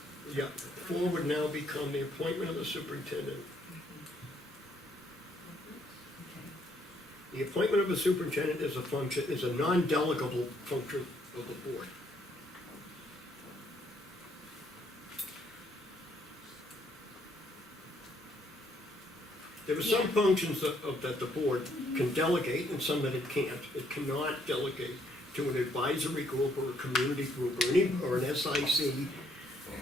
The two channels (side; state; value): both; normal; correlation 0.69